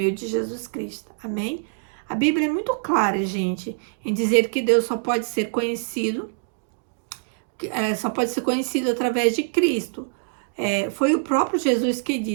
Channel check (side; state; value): left; silent; digital silence